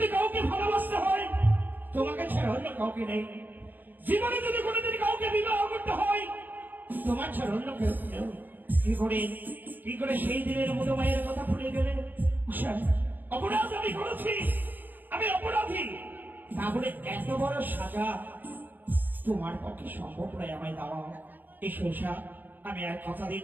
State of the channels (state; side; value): late; left; 0.088 ms